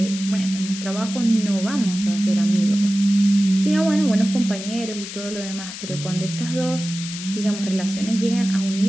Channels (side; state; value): left; noise; hiss, 10 dB below the sound